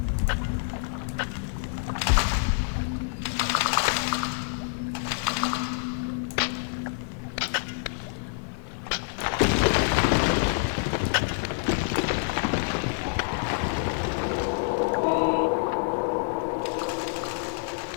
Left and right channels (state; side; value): silent; right; digital silence